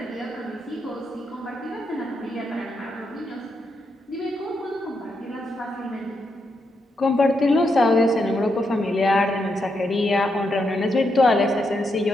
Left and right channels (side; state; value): both; normal; correlation 0.82